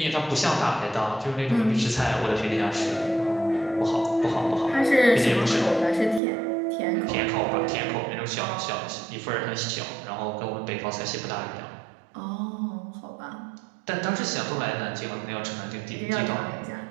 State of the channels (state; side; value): drops out; left; at 6.2 s